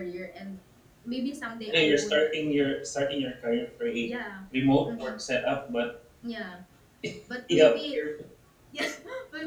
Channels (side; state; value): both; identical; correlation 1.00